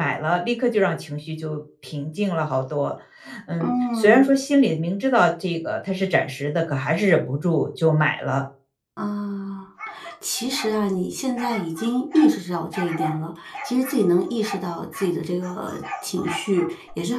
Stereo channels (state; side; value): identical; both; correlation 1.00